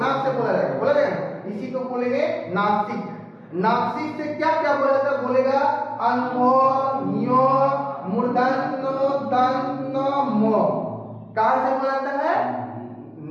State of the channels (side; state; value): both; identical; correlation 1.00